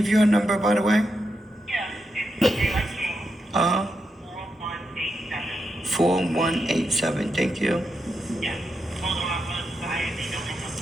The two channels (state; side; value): normal; both; correlation 0.85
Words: you a number, by the way? Yeah, it's Daylight King, 4187. 4187. Thank you. Yeah. Hold on, I'm gonna decide if they don't hang up,